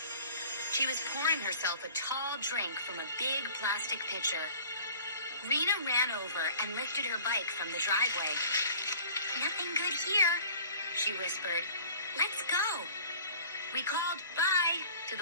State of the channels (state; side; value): inverted; both; correlation -0.46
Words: She was pouring herself a tall drink from a big plastic pitcher. Rena ran over and lifted her bike from the driveway. "Nothing good here," she whispered. "Let's go." We called bye to